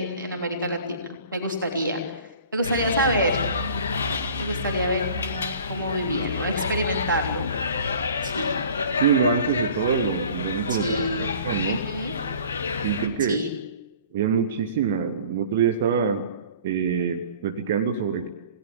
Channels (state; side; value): inverted; both; correlation -0.47